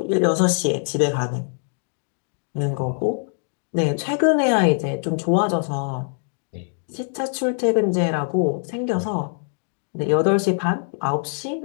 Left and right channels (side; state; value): right; silent; 63 dB below the other